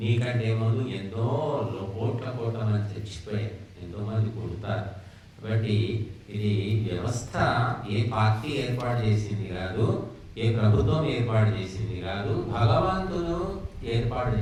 ముందు ఎంతో కోట్ల మంది చచ్చిపోయారు, ఎంతో మంది పుడతారు. కాబట్టి ఇది వ్యవస్థ ఏ పార్టీ ఏర్పాటు చేసింది కాదు, ఏ ప్రభుత్వం ఏర్పాటు చేసింది కాదు, భగవంతుడు ఏర్పాటు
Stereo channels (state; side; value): identical; both; correlation 1.00